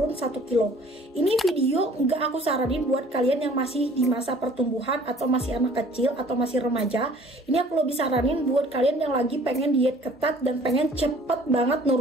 1 kilo. Ini video nggak aku saranin buat kalian yang masih di masa pertumbuhan atau masih anak kecil atau masih remaja. Ini aku lebih saranin buat kalian yang lagi pengen diet ketat dan pengen cepet banget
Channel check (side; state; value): both; normal; correlation 0.53